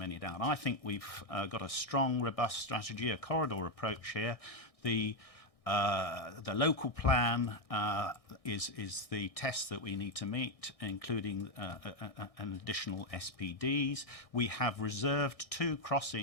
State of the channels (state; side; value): late; right; 1.6 ms